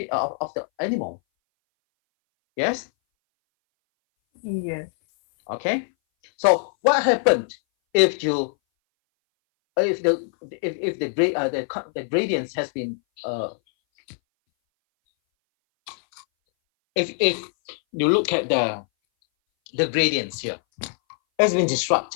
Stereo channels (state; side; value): silent; right; 60 dB below the other